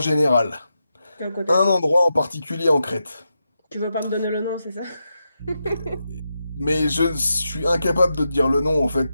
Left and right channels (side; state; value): both; inverted; correlation -0.87